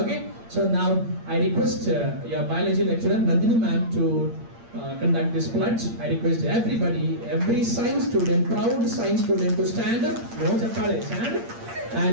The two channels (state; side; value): late; left; 8.7 ms